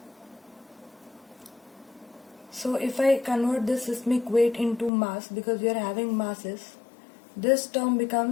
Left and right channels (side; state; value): right; drops out; at 4.9 s